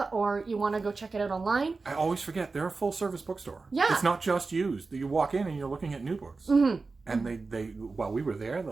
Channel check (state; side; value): quieter; left; 4.0 dB